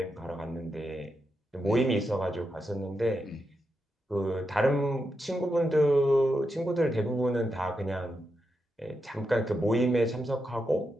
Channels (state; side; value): normal; both; correlation 0.86